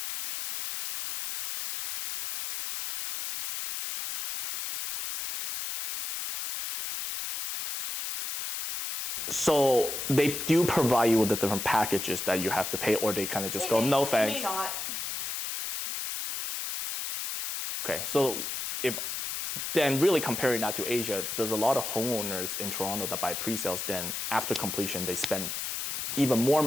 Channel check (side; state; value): left; noise; hiss, 4 dB below the sound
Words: ceiling painted, or you can pay to get window coverings on. But it's not, the level of finish is really different than what we come to expect here in Vancouver. So they do provide you with the different packages that you have to pay, or they kind of just go, no thanks. May not. Okay. Yeah, most of them do. Most of them do. Okay, so if then really comparing that to Asia, there's a lot of homeowners in Toronto that buy pre-sales, then after completion they spend even more